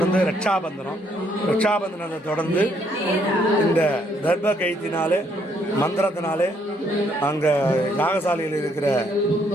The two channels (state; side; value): normal; both; correlation 0.70